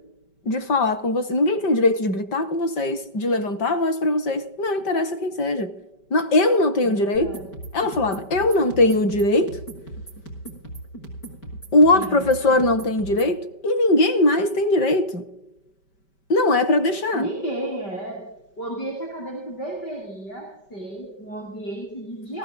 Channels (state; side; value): late; right; 5.2 ms